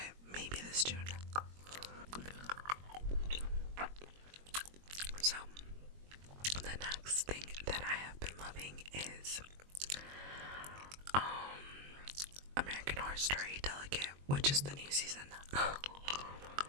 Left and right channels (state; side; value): late; left; 21 ms